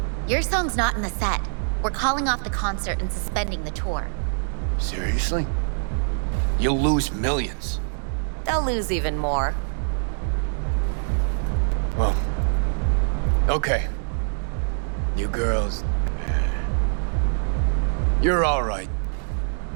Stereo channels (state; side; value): silent; left; digital silence